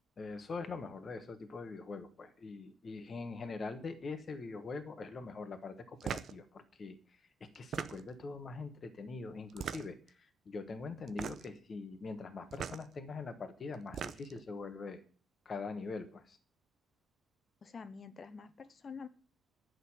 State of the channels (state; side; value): normal; both; correlation 0.78